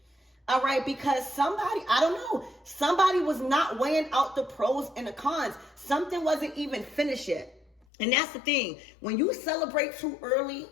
All right. Because somebody, I don't know, somebody was not weighing out the pros and the cons. Something wasn't even finished yet. And that's the thing. When you celebrate too early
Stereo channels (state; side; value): drops out; right; at 7.8 s